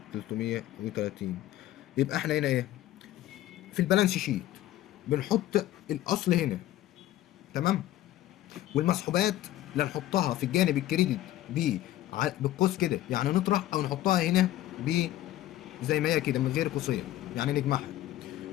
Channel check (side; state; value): right; quieter; 14.2 dB